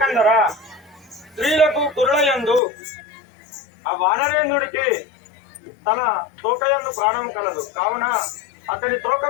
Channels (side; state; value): right; drops out; at 2.6 s